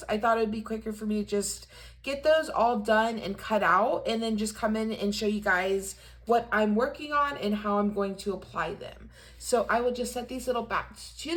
I thought it would be quicker for me to just get those all done and cut out and then just come in and show you guys what I'm working on and how I'm going to apply them. So I will just set these little bats to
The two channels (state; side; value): identical; both; correlation 1.00